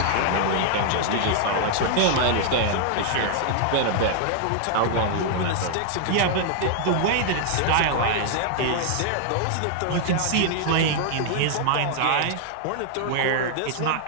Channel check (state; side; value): different; both; correlation -0.01